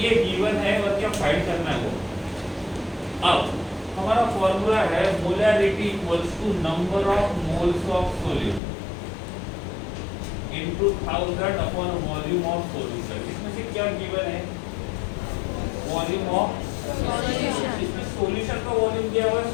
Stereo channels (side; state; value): right; drops out; at 8.6 s